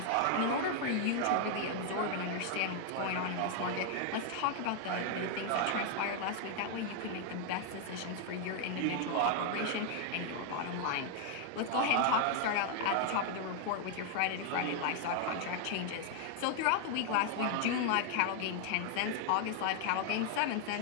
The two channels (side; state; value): both; different; correlation 0.00